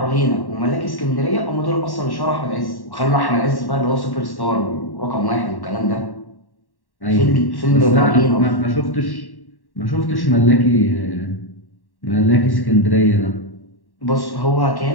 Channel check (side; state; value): right; late; 1.1 ms